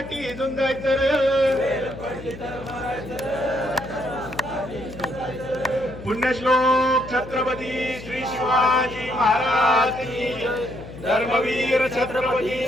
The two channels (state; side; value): noise; left; hum, 14 dB below the sound